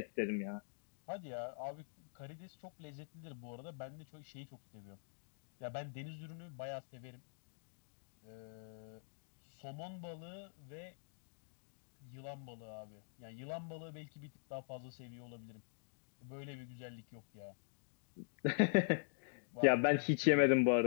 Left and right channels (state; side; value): silent; right; digital silence